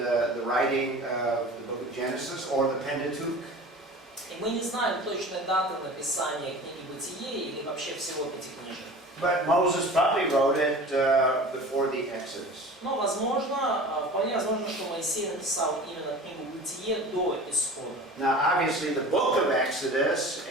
writing of the book of Genesis or the Pentateuch. И мы не знаем точной даты написания книги Бытие или вообще всего Пятикнижия. But Moses probably wrote it before the Exodus. Но вполне возможно, что Моисей написал именно книгу Бытие до Исхода. Now, obviously, the book of Exodus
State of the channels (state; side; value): normal; both; correlation 0.39